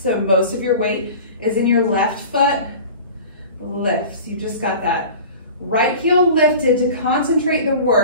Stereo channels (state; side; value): inverted; both; correlation -0.39